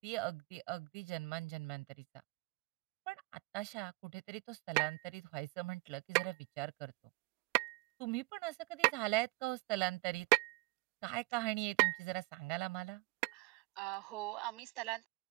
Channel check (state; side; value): quieter; left; 25.7 dB